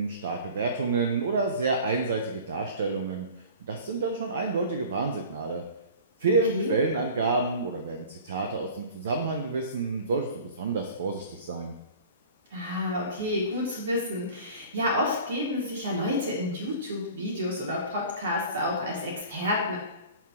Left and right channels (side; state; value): both; inverted; correlation -0.42